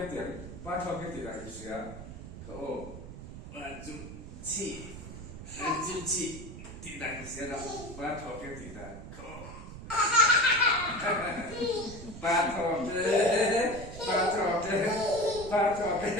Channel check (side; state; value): right; noise; rumble, 12 dB below the sound